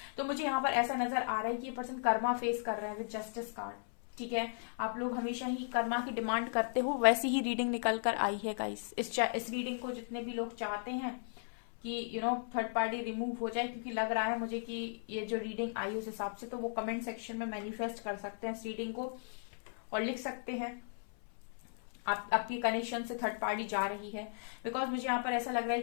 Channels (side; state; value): right; silent; 54 dB below the other